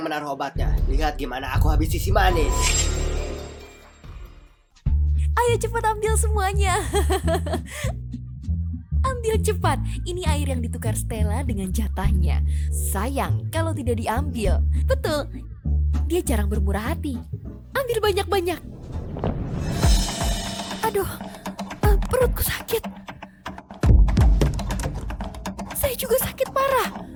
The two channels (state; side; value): identical; both; correlation 1.00